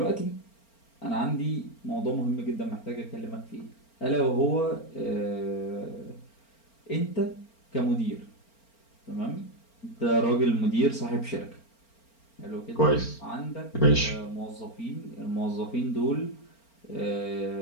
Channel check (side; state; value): right; late; 4.4 ms